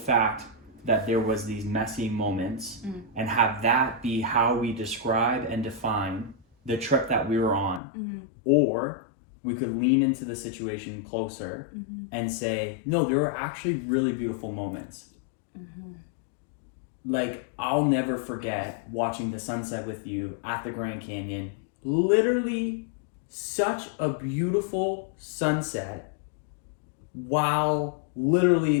that there was these messy moments and have that be how we describe and define the trip that we were on, or we could lean into the situation closer and say, no, there were actually really beautiful moments. Like, I'll never forget watching the sunset with you at the Grand Canyon. Literally such a beautiful sunset while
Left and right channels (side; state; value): right; drops out; at 7.8 s